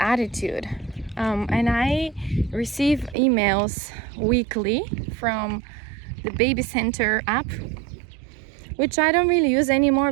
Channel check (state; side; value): drops out; left; at 3.2 s